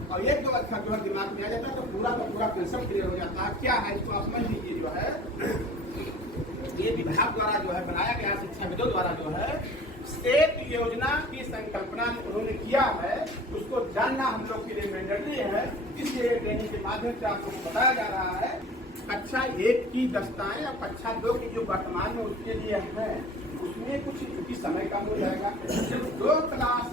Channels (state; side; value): normal; both; correlation 0.44